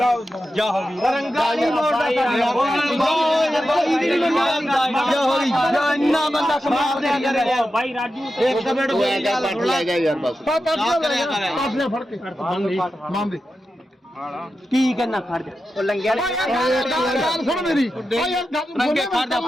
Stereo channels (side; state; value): both; normal; correlation 0.91